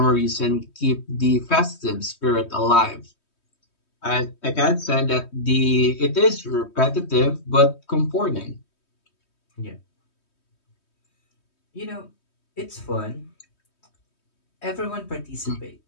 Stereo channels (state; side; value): late; right; 3.2 ms